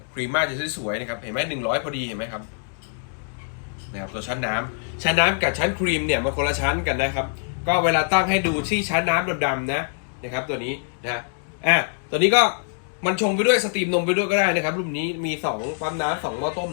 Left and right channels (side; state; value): right; silent; digital silence